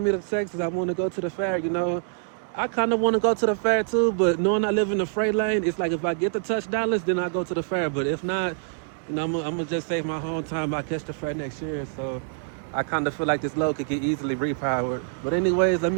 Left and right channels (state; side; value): silent; left; digital silence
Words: the Texas, I want to go to the fair, you know. I kind of want to go to the fair too, but knowing I live in the freight lane, it's like if I get the touch dollars, then I go to the fair. But if not, you know, I'm going to just save my home time. I catch the fair next year. So I kind of feel like this load could get easily repowered. But anyways, let